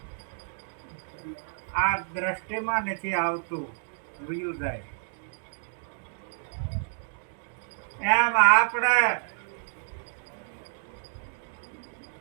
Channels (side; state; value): left; silent; digital silence